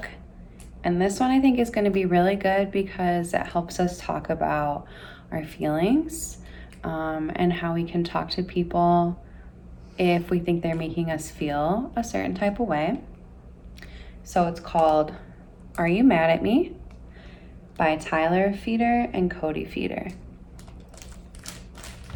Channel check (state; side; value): identical; both; correlation 1.00